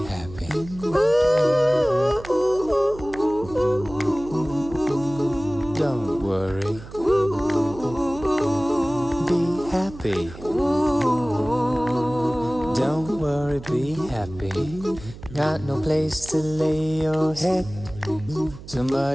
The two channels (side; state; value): right; noise; hum, 15 dB below the sound